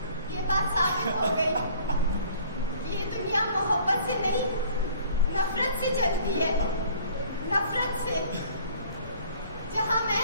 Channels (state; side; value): inverted; both; correlation -0.54